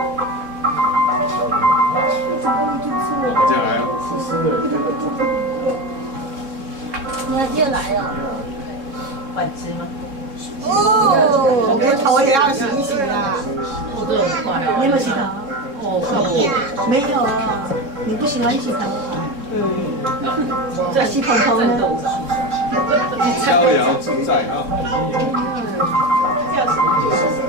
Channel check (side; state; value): left; late; 3.7 ms